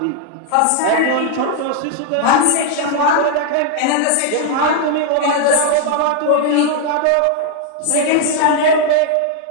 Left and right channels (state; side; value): different; both; correlation 0.00